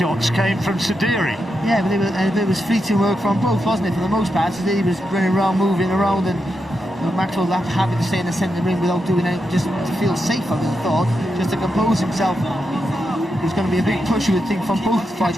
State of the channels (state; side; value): normal; both; correlation 0.86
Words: came from Sediri. Yeah, but it was fleeting work from both, wasn't it? For the most part, Sediri was running around, moving around, and Maxwell happy to stay in the centre of the ring without doing anything, just to feel safe, I would have thought, just to compose himself. There's going to be a big push, you would think, from both